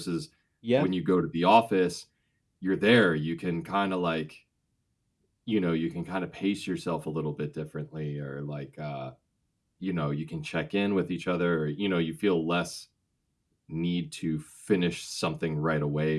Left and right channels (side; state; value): both; identical; correlation 1.00